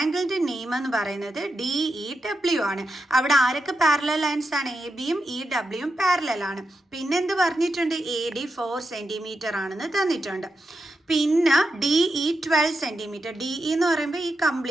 നെയിം എന്ന് പറയുന്നത് DEW ആണ്. അവിടെ ആരൊക്കെ പാരലൽ ലൈൻസ് ആണ്? എ ബിയും ഇ ഡബ്ല്യുവും പാരലൽ ആണ്. പിന്നെ എന്ത് പറഞ്ഞിട്ടുണ്ട്? AD 4 cm ആണെന്ന് തന്നിട്ടുണ്ട്. പിന്നെ DE 12 cm. DE എന്ന് പറയുമ്പോൾ ഈ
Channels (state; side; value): normal; both; correlation 0.87